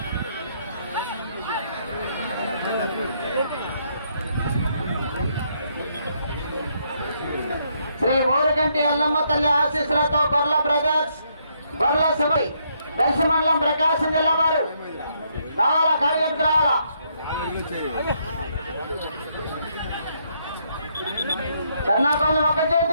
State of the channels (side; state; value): both; inverted; correlation -0.74